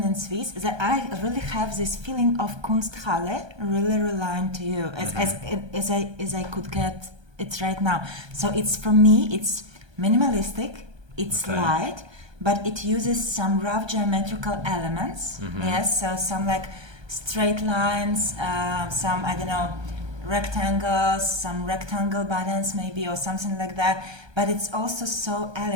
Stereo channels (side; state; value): left; late; 1.3 ms